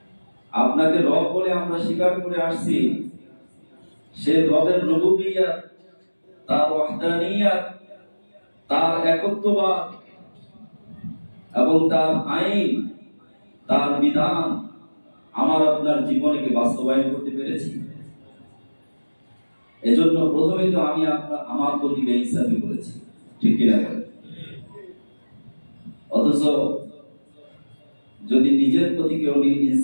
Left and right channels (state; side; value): inverted; both; correlation -1.00